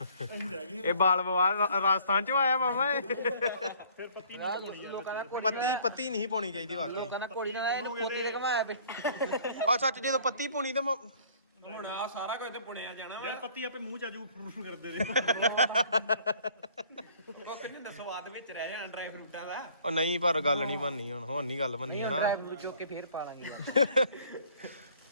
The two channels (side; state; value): both; inverted; correlation -0.56